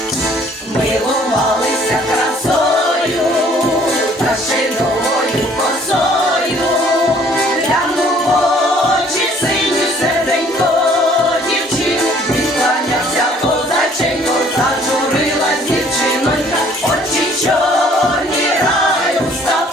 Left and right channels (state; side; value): normal; both; correlation 0.58